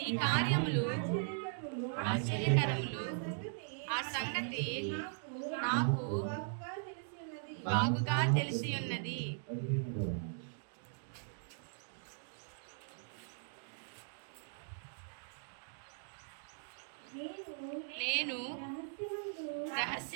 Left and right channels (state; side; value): silent; left; digital silence